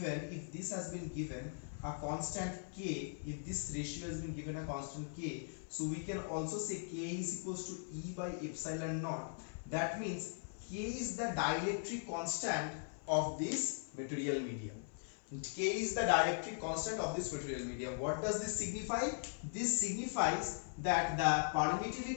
given a constant k, if this ratio has been given a constant k, so we can also say k is equals to E by epsilon naught. That means k is the dielectric constant of this material medium. K is the dielectric constant of this material medium. What does this signify? This signifies that the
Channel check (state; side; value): silent; right; 51 dB below the other